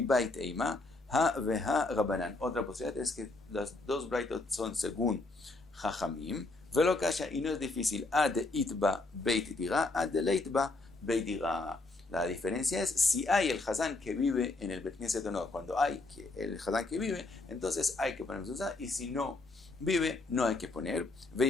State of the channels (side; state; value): right; quieter; 3.2 dB